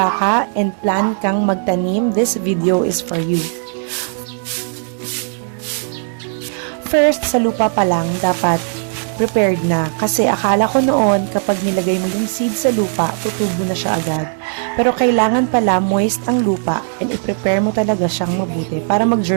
ka and plan kang magtanim, this video is for you. First, sa lupa pa lang, dapat prepared na. Kasi akala ko noon, kapag nilagay mo yung seed sa lupa, tutubo na siya agad. Pero kailangan pala moist ang lupa and i-prepare mo talaga siyang mabuti para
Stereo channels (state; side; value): silent; left; 62 dB below the other